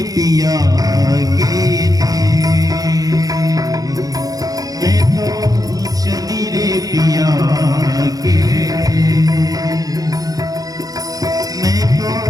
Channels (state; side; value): late; left; 0.18 ms